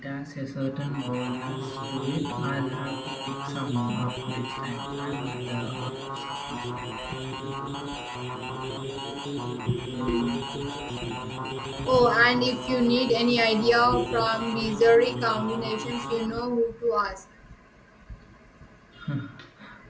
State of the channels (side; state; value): both; identical; correlation 1.00